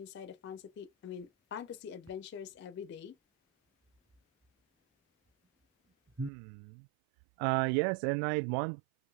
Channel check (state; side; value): drops out; left; at 6.3 s